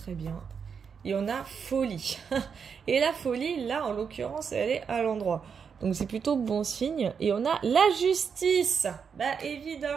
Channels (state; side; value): quieter; left; 6.4 dB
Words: bien. Et on a folie. Et la folie, là, en l'occurrence, elle est à l'endroit. Donc, c'est plutôt bon signe. Et on a la justice. Bah,